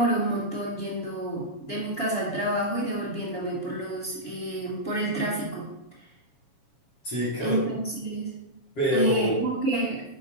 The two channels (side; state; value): right; late; 7.2 ms